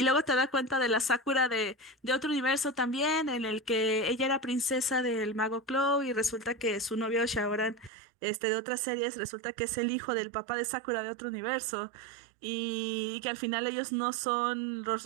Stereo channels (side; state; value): left; drops out; at 7.9 s